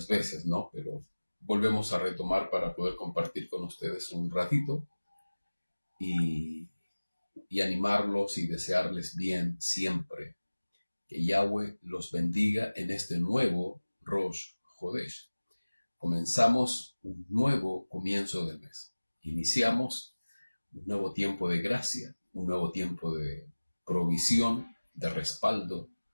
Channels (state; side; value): inverted; both; correlation -1.00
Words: veces, ¿no? Pero volvemos a retomar para poder compartir con ustedes un ratito y, y animarlos y desearles bien siempre. Que Yahweh los bendiga en este nuevo Rosh Hodesh. Comenzamos un nuevo comienzo de mes. Iniciamos un nuevo tiempo de gracia, un nuevo tiempo de provisión, de respaldo,